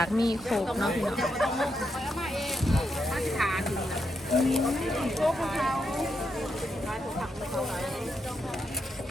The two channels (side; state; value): both; normal; correlation 0.82